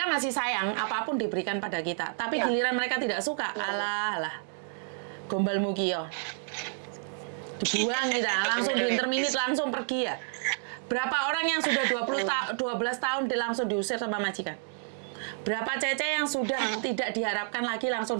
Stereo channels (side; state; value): left; silent; digital silence